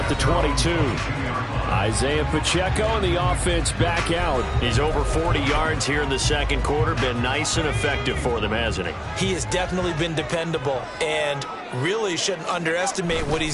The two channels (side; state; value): both; identical; correlation 1.00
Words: the 22. Isaiah Pacheco and the offense back out. He's over 40 yards here in the 2nd quarter. Been nice and effective for them, hasn't he? He has definitely been dependable and really shouldn't underestimate what